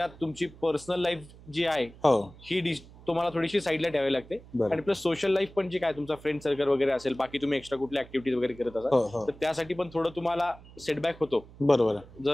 तुमची पर्सनल लाईफ जी आहे ही तुम्हाला थोडीशी साईडला ठेवावी लागते. आणि प्लस सोशल लाईफ पण जी काय तुमचा फ्रेंड सर्कल वगैरे असेल, बाकी तुम्ही एक्स्ट्रा कुठल्या ऍक्टिव्हिटीज वगैरे करत असाल तर त्यासाठी पण थोडं तुम्हाला सेटबॅक होतो. बरोबर.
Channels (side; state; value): right; noise; hum, 21 dB below the sound